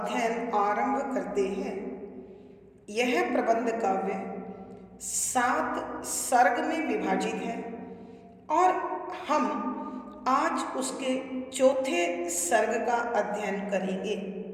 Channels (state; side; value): identical; both; correlation 1.00